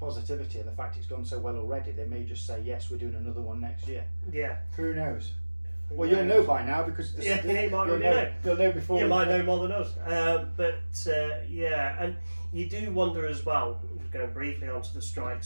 and the fact it's gone so well already, they may just say, yes, we're doing another one next year. Yeah. Who knows? Well, you'll know by now because you might already know. You'll know before. You might know more than us. And you do wonder as well, going briefly onto the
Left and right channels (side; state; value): both; inverted; correlation -1.00